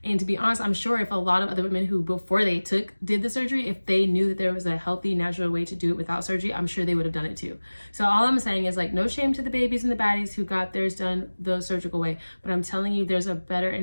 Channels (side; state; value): both; inverted; correlation -1.00